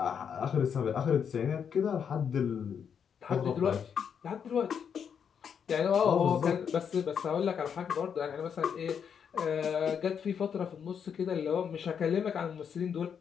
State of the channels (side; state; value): right; quieter; 7.4 dB